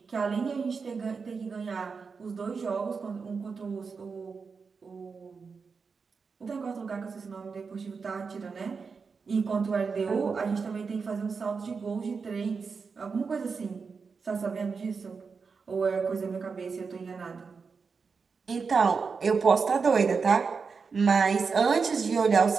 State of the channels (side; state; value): left; quieter; 5.2 dB